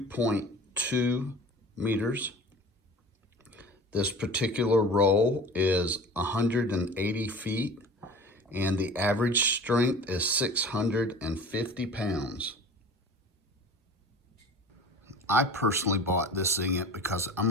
meters. This particular roll is 180 feet, and the average strength is 650 pounds. I personally bought this Zing-It because I'm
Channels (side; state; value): both; normal; correlation 0.40